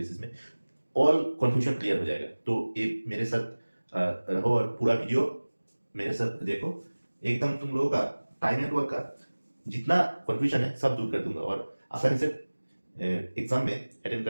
में ऑल कंफ्यूजन क्लियर हो जाएगा। तो ये मेरे साथ रहो और पूरा वीडियो मेरे साथ देखो। एकदम तुम लोगों का टाइम एंड वर्क का जितना कंफ्यूजन है सब दूर कर दूंगा और आसानी से एग्जाम में अटेंड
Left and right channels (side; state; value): both; inverted; correlation -1.00